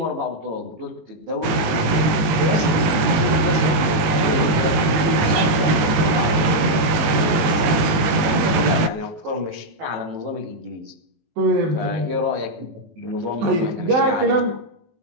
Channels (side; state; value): left; late; 19 ms